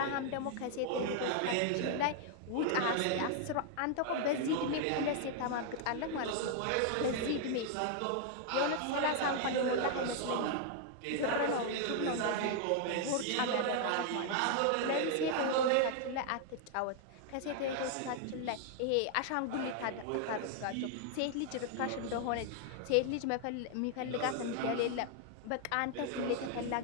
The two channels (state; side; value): different; both; correlation 0.00